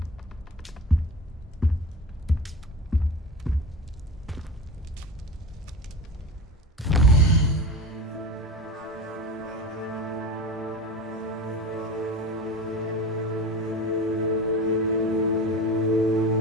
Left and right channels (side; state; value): both; normal; correlation 0.29